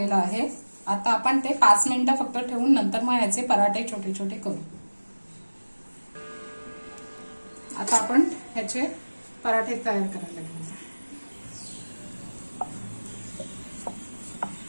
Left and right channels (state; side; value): inverted; both; correlation -1.00